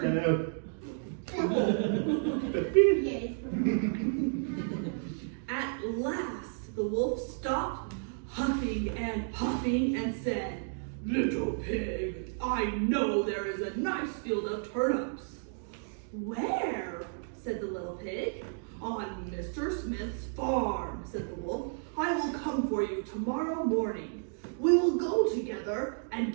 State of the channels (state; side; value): silent; left; digital silence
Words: Yes. At last, the wolf stopped huffing and puffing and said, "Little pig, I know there is a nice field of turnips." "Where?" said the little pig. "On Mr. Smith's farm," said the wolf. "I will come for you tomorrow morning. We will go together and